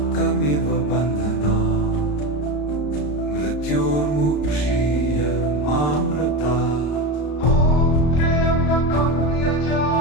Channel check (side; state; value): right; late; 34 ms